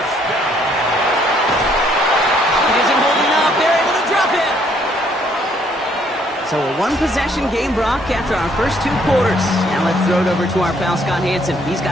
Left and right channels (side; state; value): both; normal; correlation 0.66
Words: It isn't holding up. They're able to drop it. So a one-possession game, Brock, after our first 2 quarters. Now let's throw it over to our pal Scott Hanson. He's